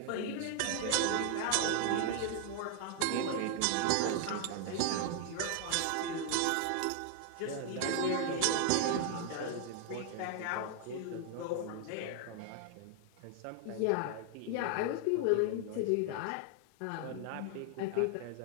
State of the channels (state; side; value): different; both; correlation 0.00